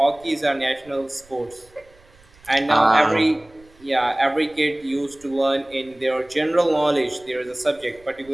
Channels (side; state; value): right; noise; rumble, 28 dB below the sound